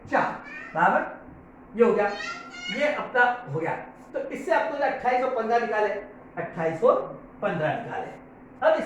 बराबर, ये हो गया, ये अपना हो गया। तो इससे आपको 28 और 15 निकाले, 28 और 15 निकाले। अब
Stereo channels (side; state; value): both; identical; correlation 1.00